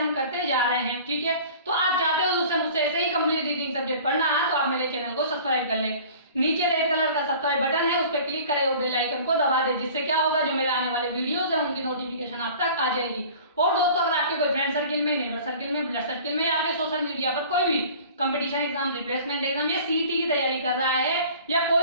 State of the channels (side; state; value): both; inverted; correlation -0.45